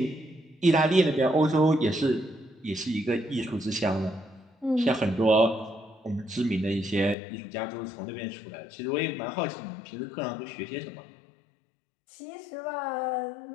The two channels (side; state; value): right; drops out; at 7.2 s